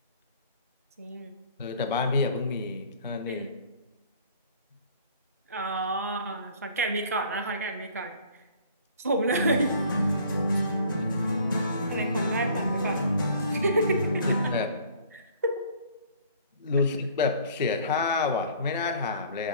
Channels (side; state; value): both; inverted; correlation -0.53